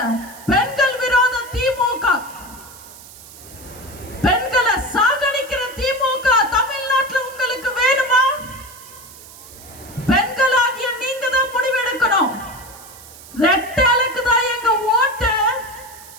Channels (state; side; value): noise; right; hiss, 18 dB below the sound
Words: பெண்கள் விரோத திமுக, பெண்களை சாகடிக்கிற திமுக தமிழ்நாட்டில் உங்களுக்கு வேணுமா? பெண்களாகிய நீங்க தான் முடிவெடுக்கணும். ரெட்டலுக்கு தான் எங்க ஓட்டு.